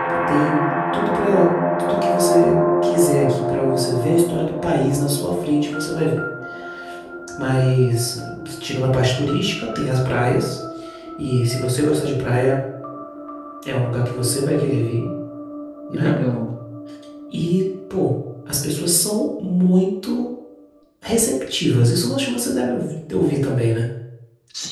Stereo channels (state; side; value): identical; both; correlation 1.00